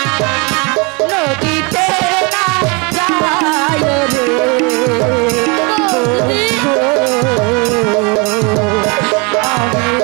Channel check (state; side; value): quieter; left; 30.7 dB